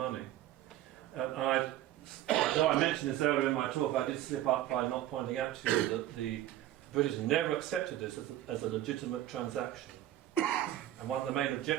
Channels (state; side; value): quieter; left; 13.4 dB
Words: Though I mentioned this earlier in my talk, I did slip up by not pointing out to you that the British never accepted this as a legitimate transaction. And one of the main